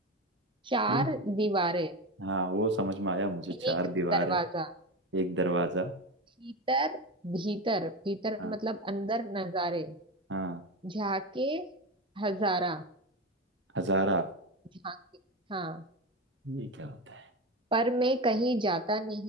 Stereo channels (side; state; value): both; normal; correlation 0.21